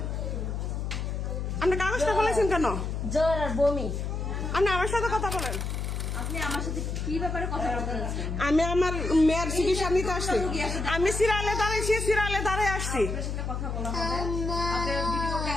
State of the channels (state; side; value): noise; left; hum, 3 dB below the sound